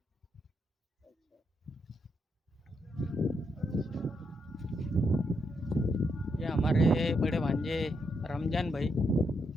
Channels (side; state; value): both; normal; correlation 0.80